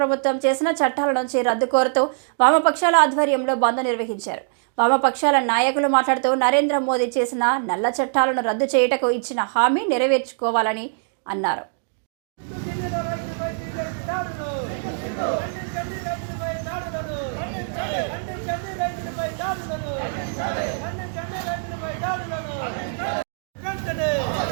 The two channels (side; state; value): left; silent; digital silence